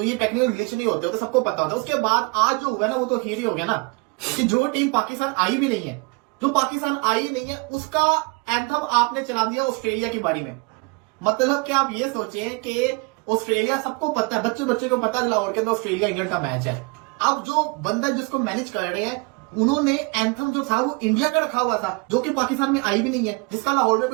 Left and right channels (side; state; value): left; quieter; 29.6 dB